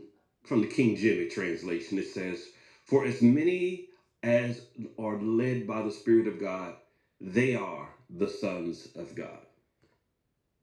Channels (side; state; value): both; identical; correlation 1.00